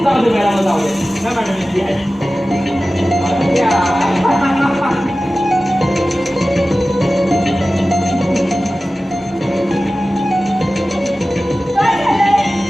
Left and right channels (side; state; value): both; normal; correlation 0.96